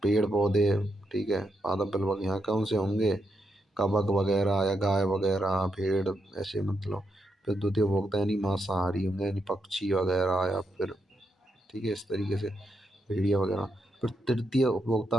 पेड़ पौधे। ठीक है। पादप प्लवक यहाँ कौन से होंगे? कबक वगैरह या गाय वगैरह, भेड़, ऐसे मतलब। फिर द्वितीय उपभोक्ता यानी मांसाहारी होंगे, यानी पक्षी वगैरह, या फिर ठीक है इस तरीके से भेड़िया वगैरह। फिर तृतीय उपभोक्ता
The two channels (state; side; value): normal; both; correlation 0.82